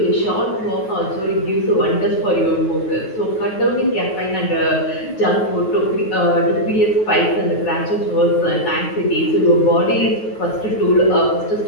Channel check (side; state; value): right; late; 9.3 ms